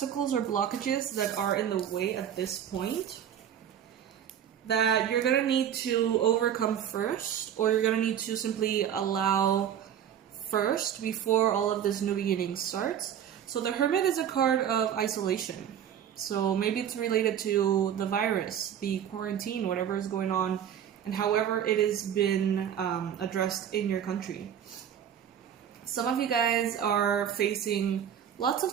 or blockages that are in the way at this point that you're going to need to overcome first, or you're going to need to simply allow first before all of this new beginning starts. So the Hermit is a card of isolation. So maybe it's related to the virus, the quarantine, whatever is going on, and however it has been addressed in your country. Some of you guys are facing lots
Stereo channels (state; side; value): quieter; left; 9.4 dB